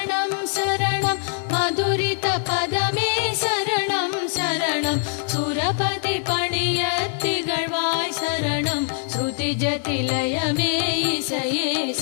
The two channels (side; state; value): right; silent; 63 dB below the other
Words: சரணம் மதுரித பதமே சரணம் சரணம் சுரபதி பணிய திகழ்வாய் சரணம் ஸ்ருதி ஜதிலயமே இசையே